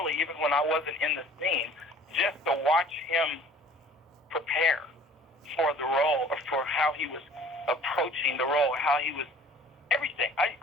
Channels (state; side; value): normal; both; correlation 0.50